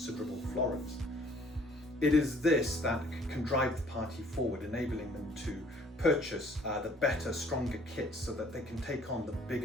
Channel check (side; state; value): both; normal; correlation 0.58